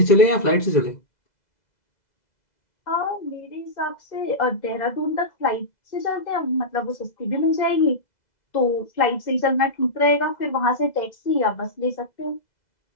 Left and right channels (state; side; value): late; right; 2.0 ms